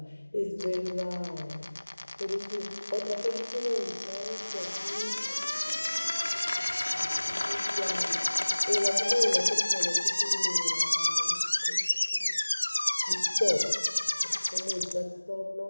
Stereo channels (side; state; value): both; inverted; correlation -1.00